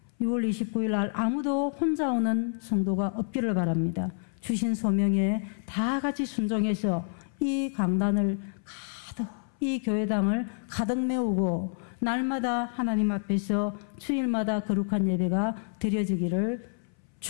6월 29일 날 아무도 혼자 오는 성도가 없기를 바랍니다. 주신 소명에 다 같이 순종해서 이 강단을 가득, 이 교회당을 가득 메우고 날마다 하나님 앞에서 주일마다 거룩한 예배가 드려지기를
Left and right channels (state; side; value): silent; right; 59 dB below the other